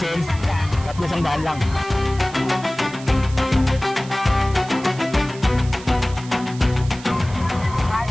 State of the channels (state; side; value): noise; right; hiss, 18 dB below the sound